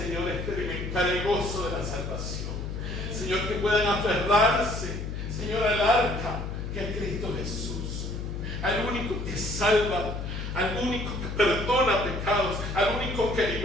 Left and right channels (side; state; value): left; noise; hum, 5 dB below the sound